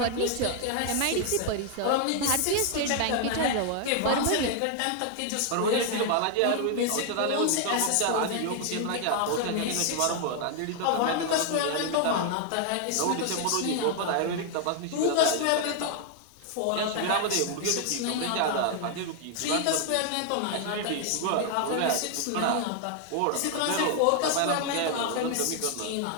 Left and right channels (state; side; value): different; both; correlation 0.00